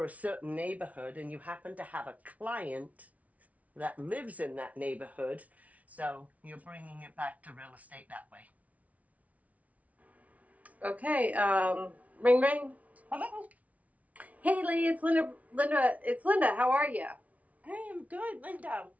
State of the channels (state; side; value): late; left; 0.069 ms